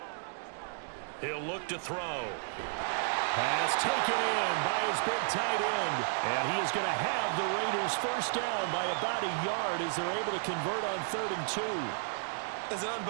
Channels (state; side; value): silent; left; digital silence